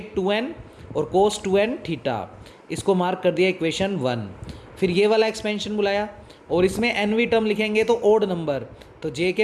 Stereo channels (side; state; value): both; identical; correlation 1.00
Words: और cos 2n थीटा, इसको मार्क कर दिया इक्वेशन 1। फिर ये वाला एक्सपेंशन बुलाया और इसमें nवीं टर्म लिखेंगे तो ओड नंबर, तो j के